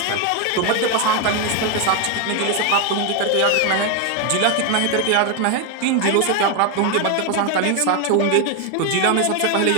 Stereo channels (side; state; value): both; different; correlation 0.02